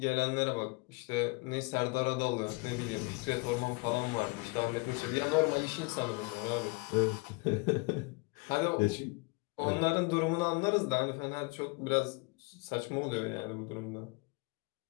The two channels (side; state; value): right; quieter; 29.0 dB